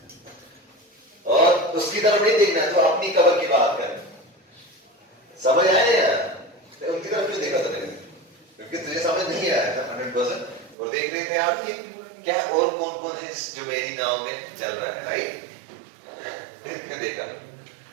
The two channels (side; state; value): left; drops out; at 10.8 s